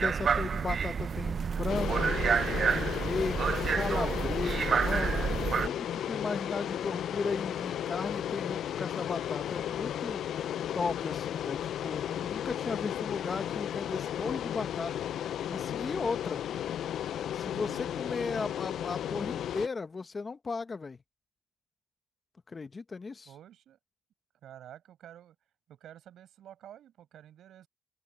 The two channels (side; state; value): both; normal; correlation 0.75